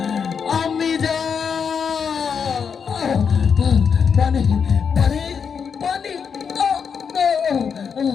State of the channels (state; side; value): quieter; right; 6.5 dB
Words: আমি যা পানি পানি পানি